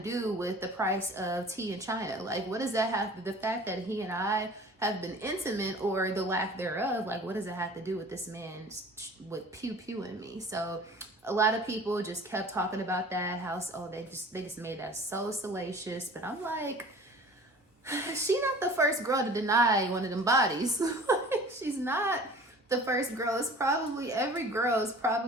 with the price of tea in China? Like, what does that have to, the fact that he and I have been intimate, or the lack thereof, like, what does it have to do with this man with pew-pewing me? So a lot of people just kept talking about that, how, they just made that so salacious. But I'm like, she not the first girl to deny one of them bodies. She's not the first girl. It's probably, every girl is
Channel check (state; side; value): normal; both; correlation 0.45